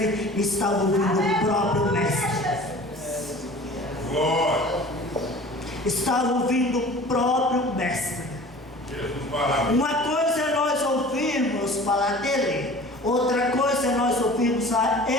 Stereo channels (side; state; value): both; normal; correlation 0.43